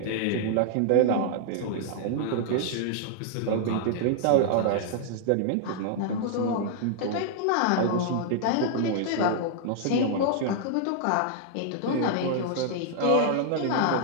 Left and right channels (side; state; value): both; different; correlation -0.01